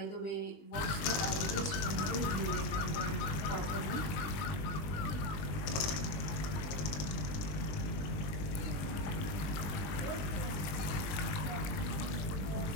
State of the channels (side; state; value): right; late; 20 ms